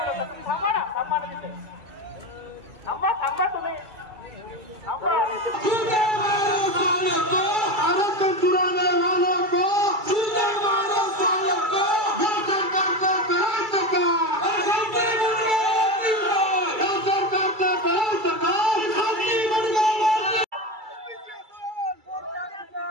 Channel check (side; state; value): left; late; 2.3 ms